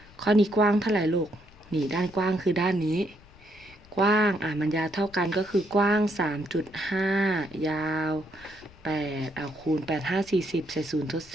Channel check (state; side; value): noise; left; rumble, 24 dB below the sound